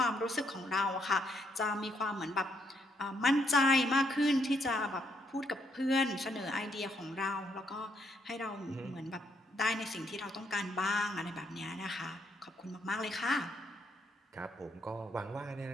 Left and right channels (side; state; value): both; normal; correlation 0.74